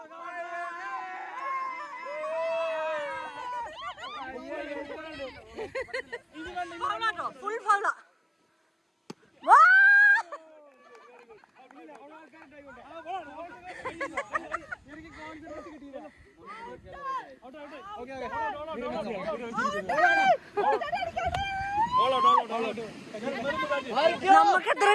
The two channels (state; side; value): identical; both; correlation 1.00